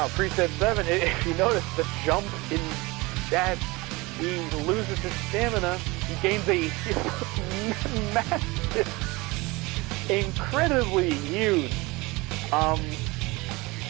preset 7, if you notice the jump in that, he loses his stamina. He gains a massive, incredibly huge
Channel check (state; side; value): quieter; left; 23.3 dB